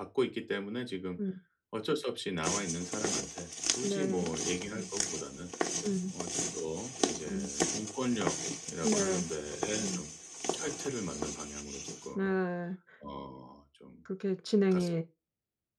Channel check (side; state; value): both; identical; correlation 1.00